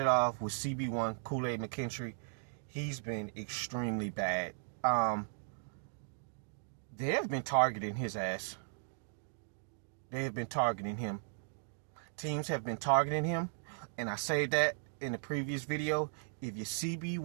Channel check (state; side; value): silent; left; digital silence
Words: off with CB1, Kool-Aid McKinstry, he's been extremely bad. They have been targeting his ass. They have been targeting him. Teams have been targeting him, and I say that in the previous video. If your